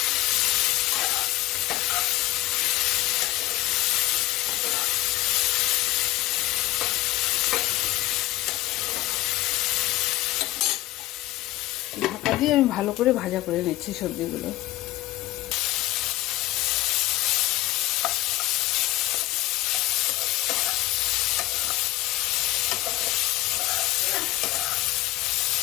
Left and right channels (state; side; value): quieter; right; 17.1 dB